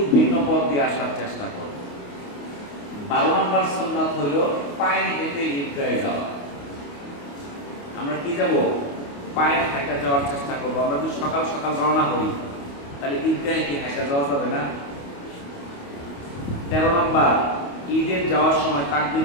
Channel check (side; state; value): right; late; 28 ms